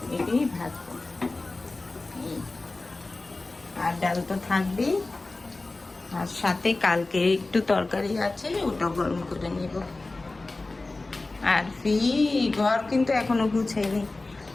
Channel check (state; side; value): quieter; right; 3.2 dB